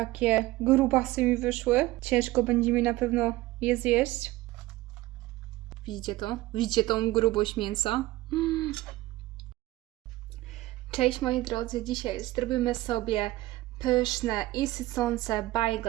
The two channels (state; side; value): quieter; left; 17.9 dB